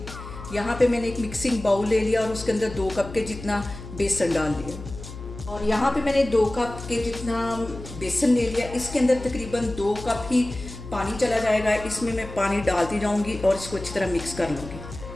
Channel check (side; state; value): left; noise; hum, 12 dB below the sound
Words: यहाँ पे मैंने एक मिक्सिंग बाउल ले लिया और उसके अंदर 2 कप के जितना बेसन डाल दिया। और यहाँ पे मैंने 2 कप के जितना बेसन ले लिया। इसके अंदर तकरीबन 2 कप ही पानी चला जाएगा। इसमें मैं पानी डालती जाऊंगी और इसको अच्छी तरह मिक्स कर लूँगी।